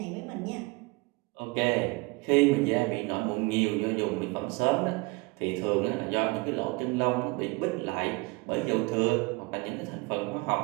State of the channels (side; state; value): left; quieter; 26.1 dB